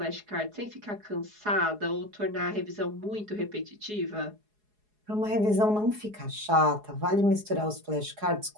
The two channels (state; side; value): late; left; 4.8 ms